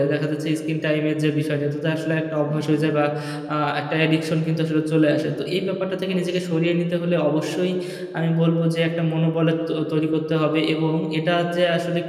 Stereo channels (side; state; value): both; identical; correlation 1.00